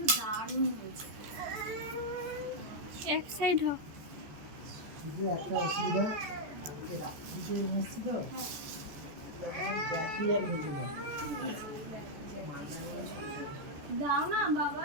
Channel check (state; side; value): late; left; 14 ms